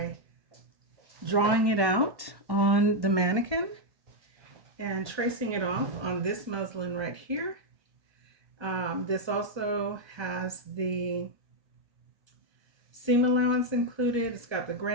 drawing it out on the mannequin and tracing it off on this muslin right here. This also has the seam allowance included. It's got the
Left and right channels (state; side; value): late; left; 1.2 ms